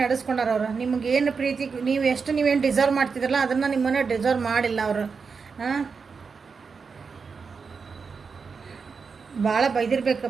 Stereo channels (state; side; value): quieter; left; 5.3 dB